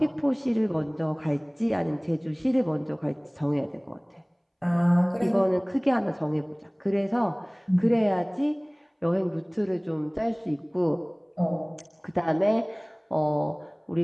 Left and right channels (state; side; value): identical; both; correlation 1.00